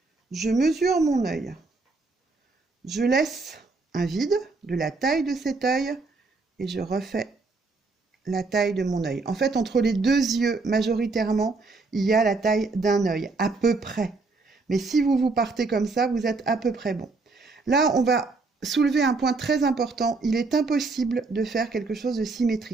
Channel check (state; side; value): quieter; left; 3.8 dB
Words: je mesure mon œil. Je laisse un vide de la taille de cet œil et je refais la taille de mon œil. En fait, entre les deux yeux, majoritairement, il y a la taille d'un œil, à peu près. Mais si vous partez comme ça, vous êtes à peu près bon. Là, on va soulever un point très important. Il est impossible de faire quelque chose de